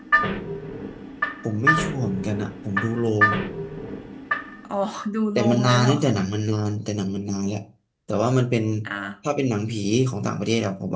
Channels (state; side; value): identical; both; correlation 1.00